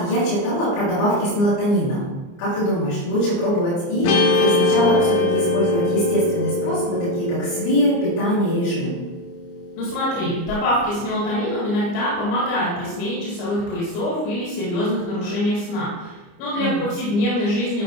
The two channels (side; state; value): right; late; 29 ms